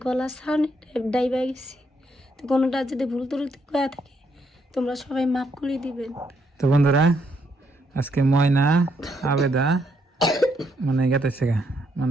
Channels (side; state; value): both; normal; correlation 0.74